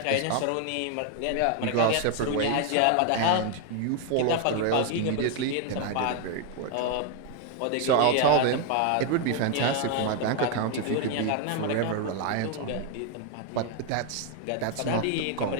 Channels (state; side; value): different; both; correlation 0.00